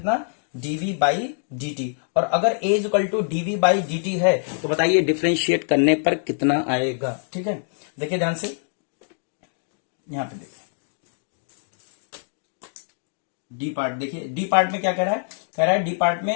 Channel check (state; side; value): silent; right; digital silence